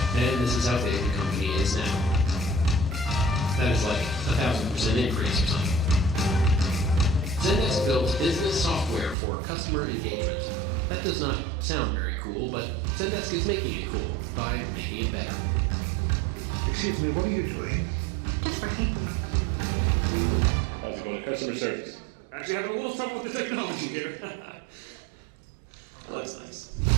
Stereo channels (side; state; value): left; drops out; at 9.2 s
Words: And this is how big the company is now. That is like 1,000% increase or something. Zendesk built business software for customer engagement. That does not sound very cool, but Zendesk is making it cool by making it better. Excuse me, what are you doing? Just working. Also going to customer service. Actually, having a little trouble with the technology here. That looks nice.